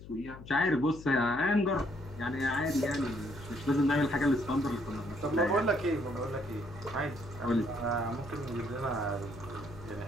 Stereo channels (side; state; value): left; noise; hum, 15 dB below the sound